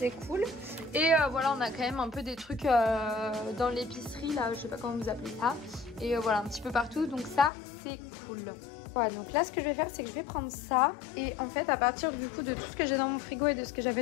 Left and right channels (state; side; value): drops out; right; at 7.5 s